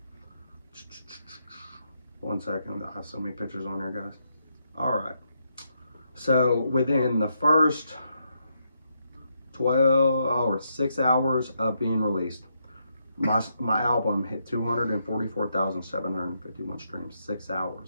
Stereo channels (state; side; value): inverted; both; correlation -0.79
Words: 1 second, I have so many pictures on there, guys. All right. So within the first 6 hours of being released, my album hit 244,751 streams. 6